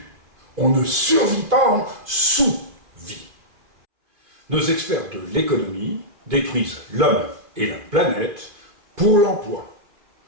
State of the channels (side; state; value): left; late; 2.5 ms